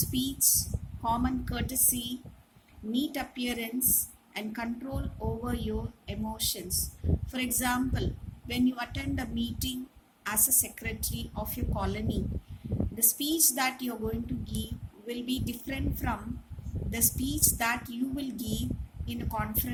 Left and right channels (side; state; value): both; identical; correlation 1.00